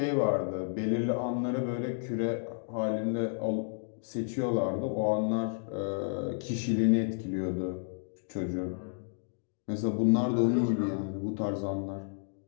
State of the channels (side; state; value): right; silent; digital silence